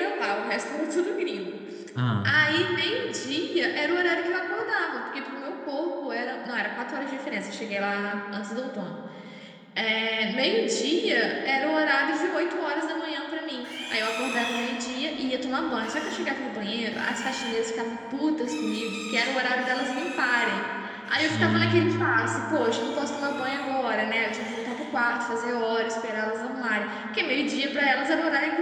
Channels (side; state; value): both; identical; correlation 1.00